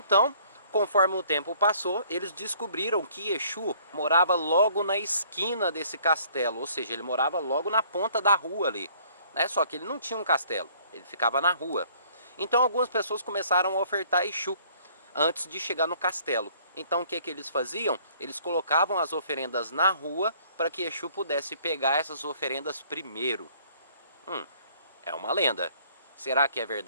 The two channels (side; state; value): both; inverted; correlation -0.59